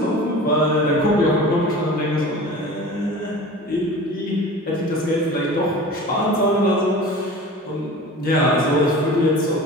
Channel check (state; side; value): normal; both; correlation 0.38